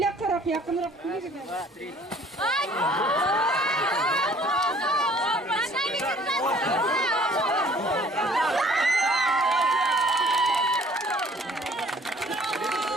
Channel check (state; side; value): normal; both; correlation 0.55